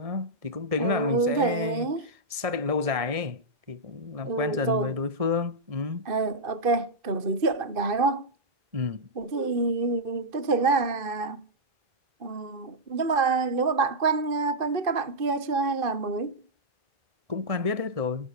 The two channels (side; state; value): left; late; 1.7 ms